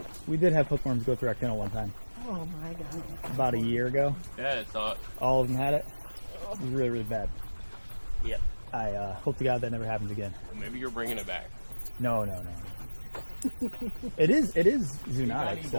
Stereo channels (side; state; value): both; inverted; correlation -1.00